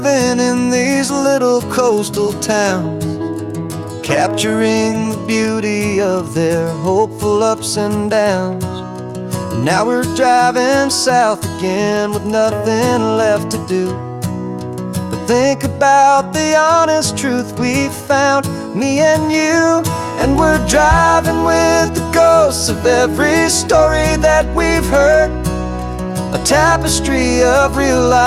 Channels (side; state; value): both; identical; correlation 1.00